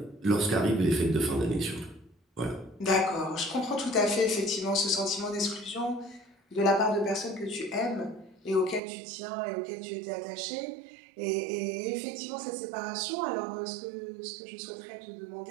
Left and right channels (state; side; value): drops out; left; at 8.8 s